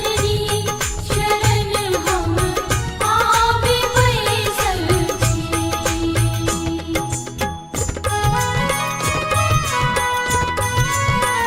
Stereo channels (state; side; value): identical; both; correlation 1.00